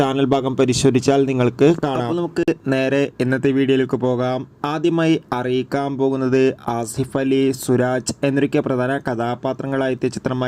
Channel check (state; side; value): identical; both; correlation 1.00